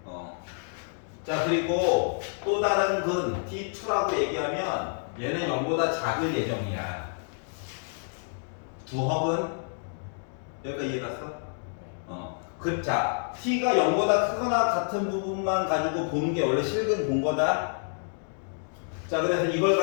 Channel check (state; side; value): silent; right; digital silence